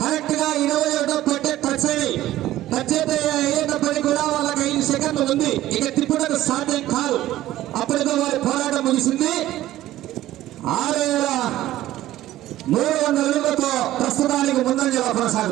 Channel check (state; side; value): quieter; left; 14.6 dB